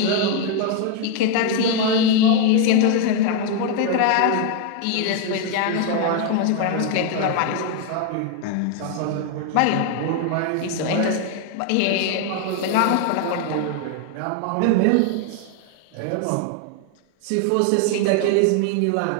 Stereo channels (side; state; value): both; different; correlation 0.01